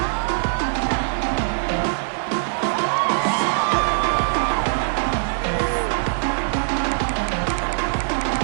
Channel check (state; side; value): silent; left; digital silence